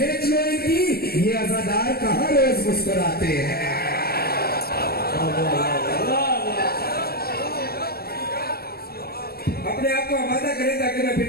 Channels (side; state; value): right; late; 0.45 ms